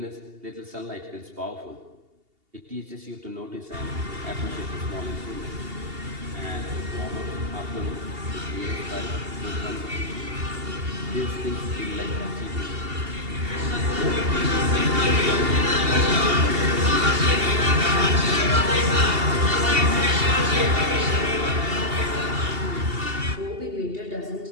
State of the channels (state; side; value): late; left; 2.8 ms